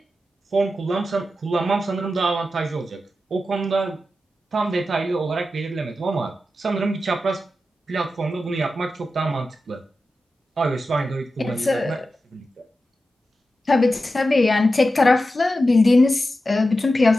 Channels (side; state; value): both; normal; correlation 0.91